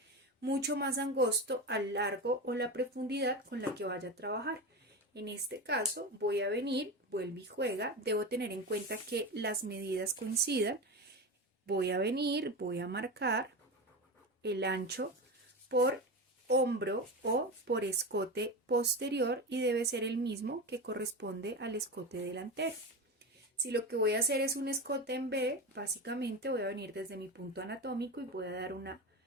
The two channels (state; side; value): normal; both; correlation 0.22